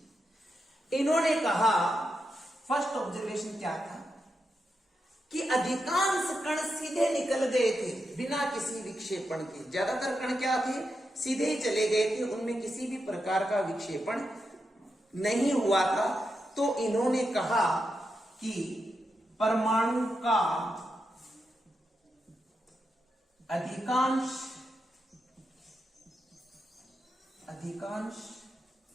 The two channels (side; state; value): both; normal; correlation 0.86